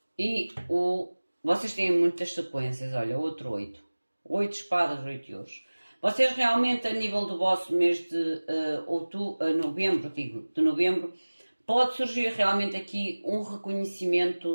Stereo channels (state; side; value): inverted; both; correlation -1.00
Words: E o... Vocês têm muitas sequências, olha, outro 8. 8 de espadas, 8 de ouros. Vocês realmente, a nível do vosso mês de novembro, pode surgir realmente aqui um